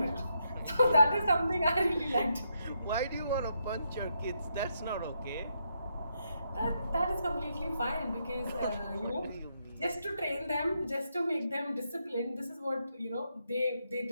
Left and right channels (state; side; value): inverted; both; correlation -0.79